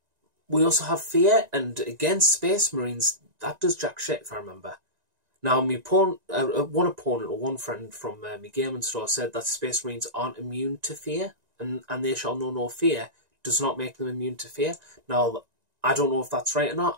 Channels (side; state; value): left; late; 1.9 ms